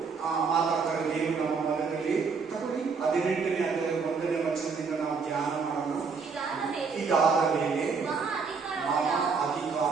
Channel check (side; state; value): left; quieter; 5.1 dB